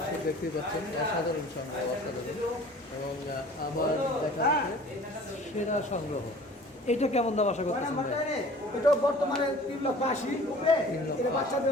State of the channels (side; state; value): both; normal; correlation 0.47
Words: দেখতেই পাচ্ছেন, অসাধারণ সংগ্রহ, অসাধারণ। এবং আমার দেখা যাচ্ছে সেরা সংগ্রহ। এটা কেমন দাম আশা করতেছেন ভাই? এটাও বর্তমানে 3,80,000। এটা বাচ্চা